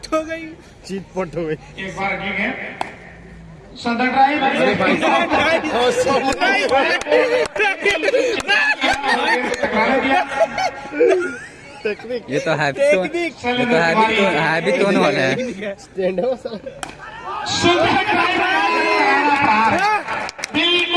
हो गई, चीट पट हो गई। एक बार की गेंद सुंदर ड्राइव, टेक्निक ये तो हैवी टोन वाला है। स्टैंड है वो सर।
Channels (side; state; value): both; identical; correlation 1.00